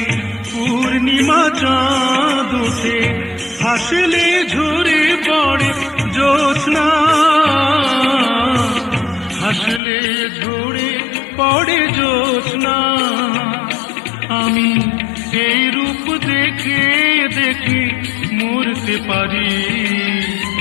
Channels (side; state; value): right; drops out; at 9.8 s